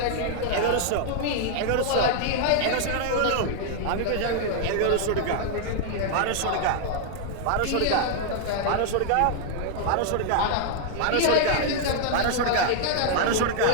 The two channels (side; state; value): both; different; correlation 0.00